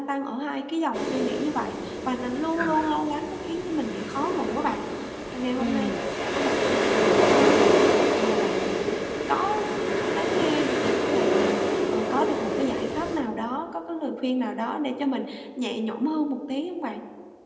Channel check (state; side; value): identical; both; correlation 1.00